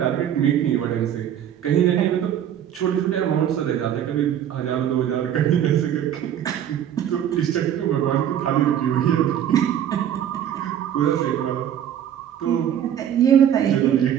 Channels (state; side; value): quieter; left; 10.0 dB